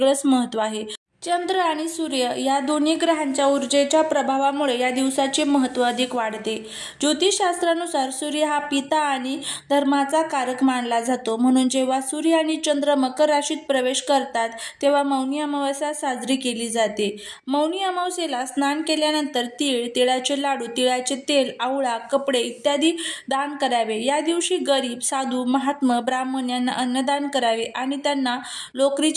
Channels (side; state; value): both; identical; correlation 1.00